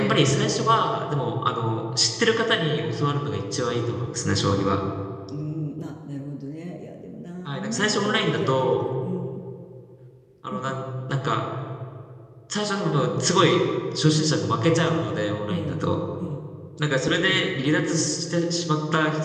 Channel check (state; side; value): identical; both; correlation 1.00